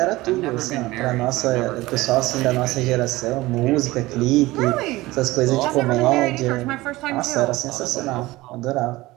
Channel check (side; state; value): left; quieter; 19.3 dB